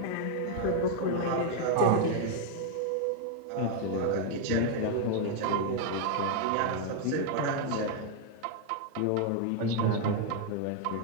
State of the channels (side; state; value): both; different; correlation 0.00